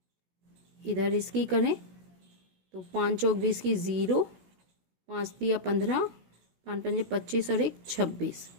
इधर इसकी करें तो 5 चौक 20 की 0, 5 दिया 15, 5 पंजे 25 और 1 26।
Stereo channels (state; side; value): late; left; 16 ms